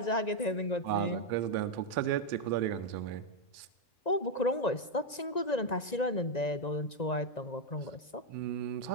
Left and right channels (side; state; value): right; late; 1.9 ms